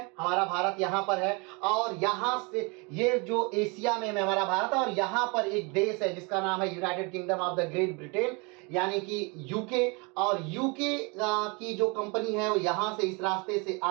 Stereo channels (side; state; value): left; quieter; 30.2 dB